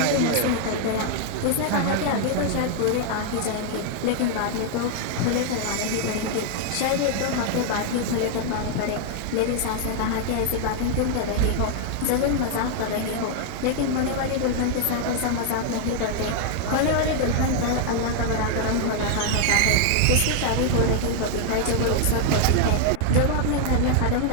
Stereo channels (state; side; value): different; both; correlation 0.00